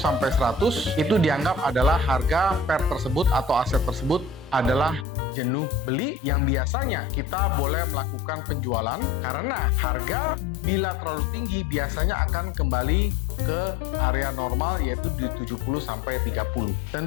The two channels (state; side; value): drops out; right; at 5.1 s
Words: 100, itu dianggap adalah harga pair tersebut atau aset tersebut adalah jenuh beli, yang biasanya kita boleh melakukan penjualan karena harga bila terlalu tinggi biasanya akan kembali ke area normal, yaitu di 70 sampai 30.